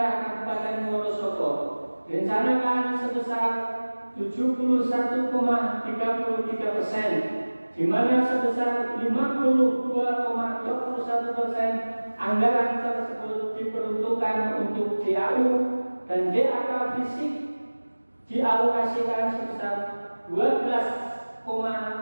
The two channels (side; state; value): both; inverted; correlation -1.00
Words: Kabupaten Wonosobo, direncanakan sebesar 71,33%, di mana sebesar 52,21% anggaran tersebut diperuntukkan untuk DAU dan DAK fisik dialokasikan sebesar